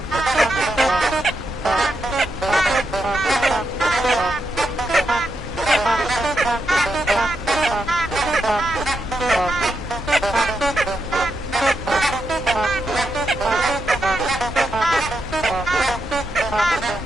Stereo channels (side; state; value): both; normal; correlation 0.84